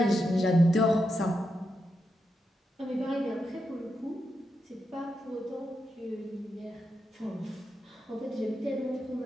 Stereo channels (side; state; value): both; normal; correlation 0.85